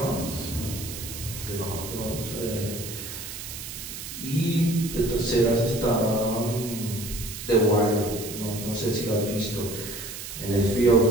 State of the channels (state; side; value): noise; right; hiss, 9 dB below the sound